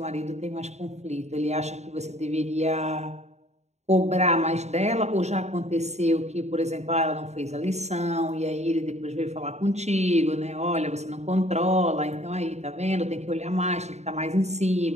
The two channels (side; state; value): left; late; 0.32 ms